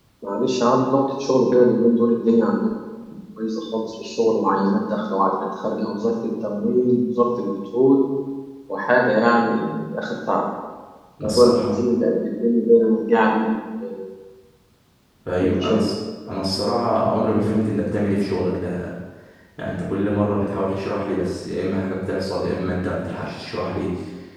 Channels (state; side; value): identical; both; correlation 1.00